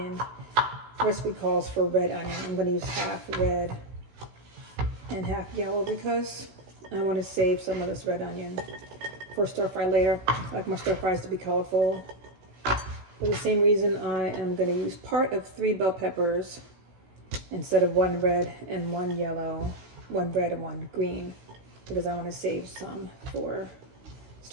The recipe calls for red onion. I'm going to use half red and half yellow because I want to save some of this red onion for stir fry later. I like my stir fries to be colorful. For the same reason, I am going to use part of 3 bell peppers instead of 1 red and 1 yellow, 1 red and 1 green, because I want to save some for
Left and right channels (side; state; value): left; late; 16 ms